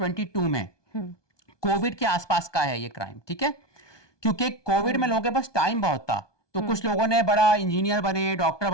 में। कोविड के आसपास का है ये क्राइम, ठीक है। क्योंकि कोविड में लोगों के पास टाइम बहुत था, तो कुछ लोगों ने बड़ा इंजीनियर बने, डॉक्टर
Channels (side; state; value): right; late; 1.2 ms